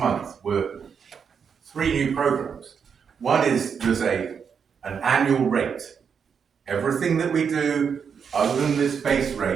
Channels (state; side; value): quieter; left; 6.7 dB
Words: were 3 new programs. One is there's an annual rate. Everything that we do other than this base